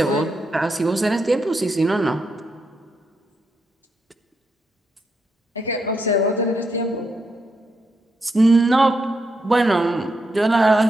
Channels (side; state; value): both; normal; correlation 0.81